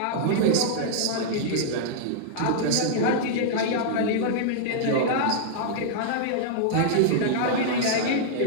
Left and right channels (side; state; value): both; different; correlation -0.01